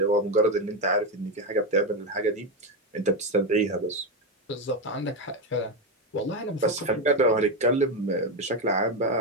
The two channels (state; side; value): normal; both; correlation 0.10